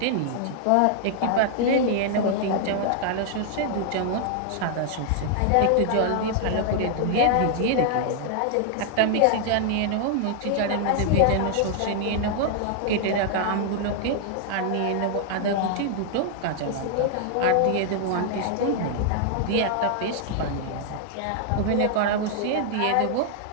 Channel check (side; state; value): both; different; correlation 0.00